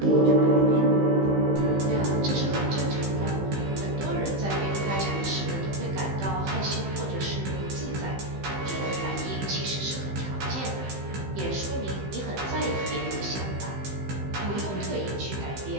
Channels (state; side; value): late; left; 15 ms